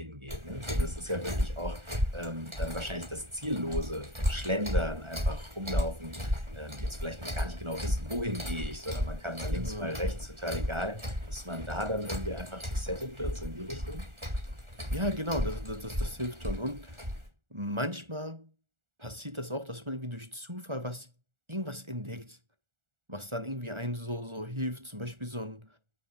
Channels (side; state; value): left; late; 1.4 ms